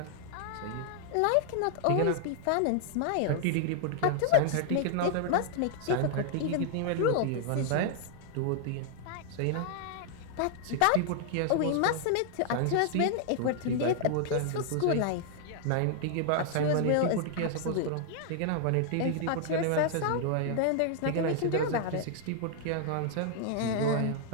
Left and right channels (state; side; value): different; both; correlation -0.01